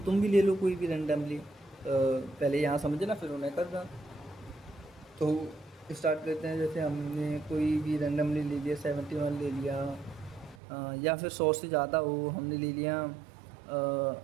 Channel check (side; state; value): left; drops out; at 10.6 s